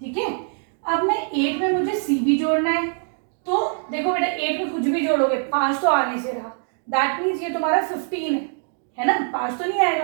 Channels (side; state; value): left; silent; 56 dB below the other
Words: ठीक है, अब मैं 8 में मुझे सी भी जोड़ना है। तो देखो बेटा, 8 में कुछ भी जोड़ोगे 5 तो आने से रहा, दैट मीन्स ये तुम्हारा 15 है ना, 5 तो नहीं